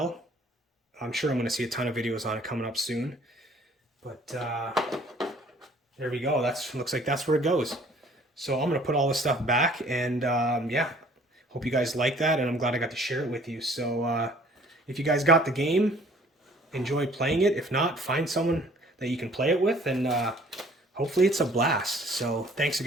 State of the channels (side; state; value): both; normal; correlation 0.55